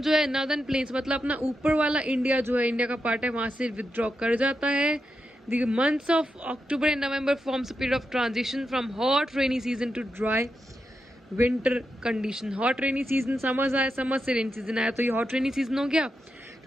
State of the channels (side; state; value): both; normal; correlation 0.87